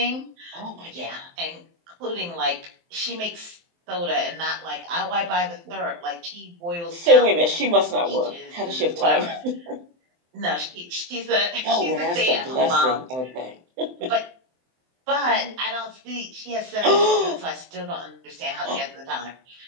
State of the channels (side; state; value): left; late; 23 ms